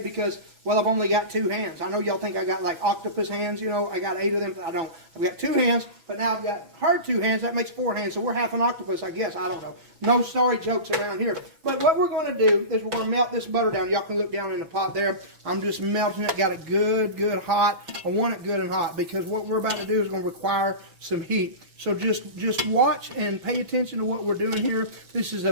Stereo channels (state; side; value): late; left; 6.1 ms